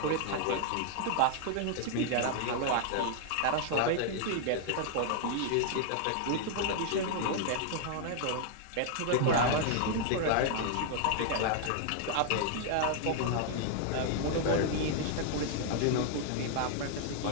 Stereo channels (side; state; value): both; different; correlation 0.00